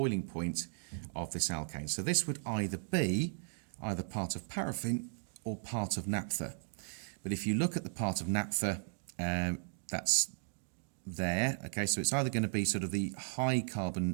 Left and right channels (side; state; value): left; silent; digital silence